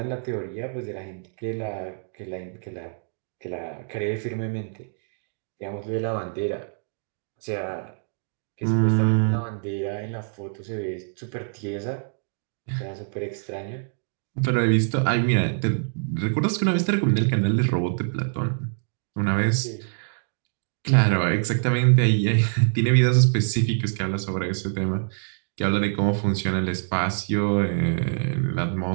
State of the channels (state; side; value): silent; left; digital silence